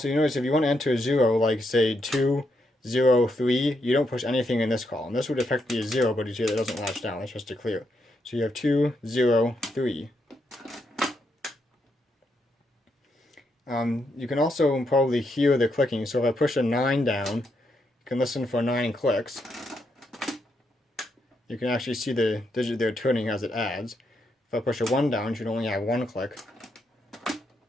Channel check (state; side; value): normal; both; correlation 0.80